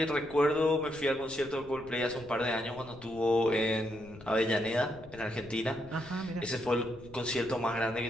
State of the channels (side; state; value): left; noise; rumble, 20 dB below the sound